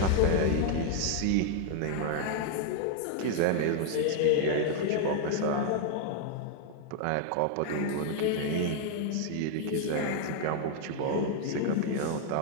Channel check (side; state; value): both; different; correlation 0.00